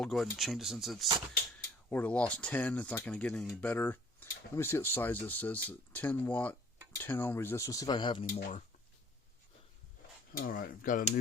go ahead and change it since it's already lost 10. It's not going to get any better. Let me see what size this is. 10 watt, 10 ohm resistor. Let's see if I have any more. Alright, I've got a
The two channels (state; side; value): normal; both; correlation 0.54